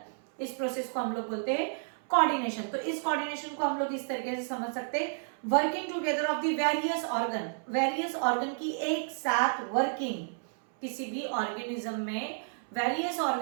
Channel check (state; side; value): silent; left; 57 dB below the other